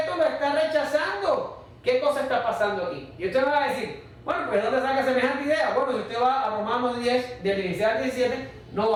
lo está rechazando. ¿Qué cosa está pasando aquí? Y usted me va a decir, bueno, pues ¿de dónde saca semejante idea? Bueno, si usted va a Romanos 10, del 16 al 17, no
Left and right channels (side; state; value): both; identical; correlation 1.00